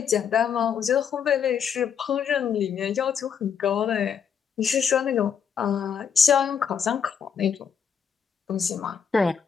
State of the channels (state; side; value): quieter; right; 7.3 dB